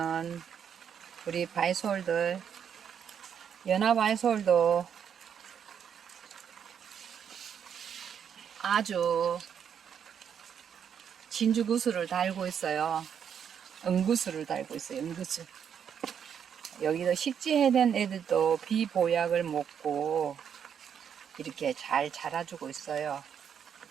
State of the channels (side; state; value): left; quieter; 8.0 dB